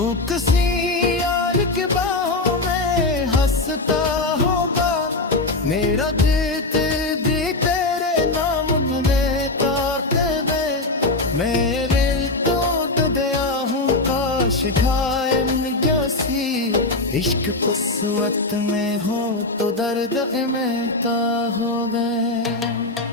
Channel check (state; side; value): quieter; right; 3.1 dB